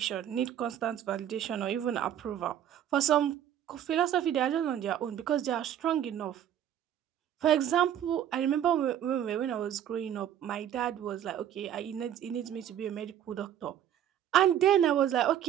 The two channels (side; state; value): left; quieter; 10.4 dB